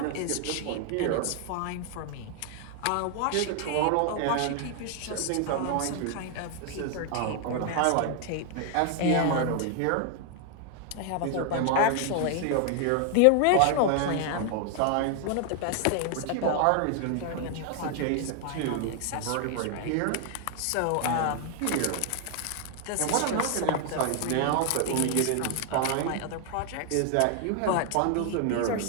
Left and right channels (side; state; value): both; different; correlation 0.00